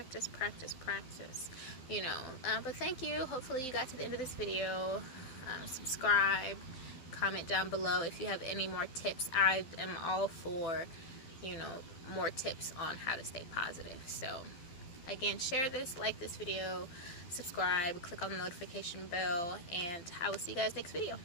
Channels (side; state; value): right; late; 12 ms